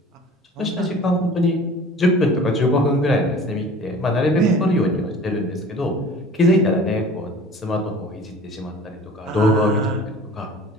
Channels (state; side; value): normal; both; correlation 0.44